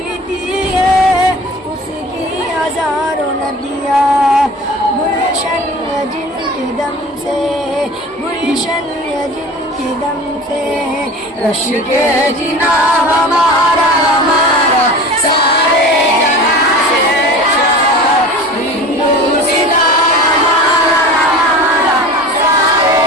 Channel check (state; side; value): normal; both; correlation 0.37